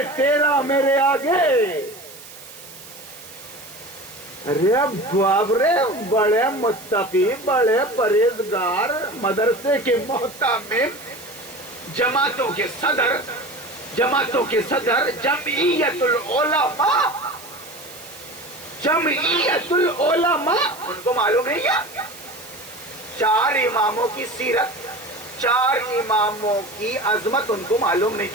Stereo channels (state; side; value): noise; right; hiss, 17 dB below the sound